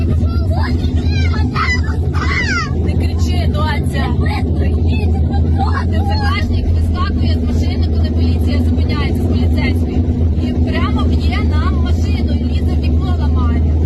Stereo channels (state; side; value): identical; both; correlation 1.00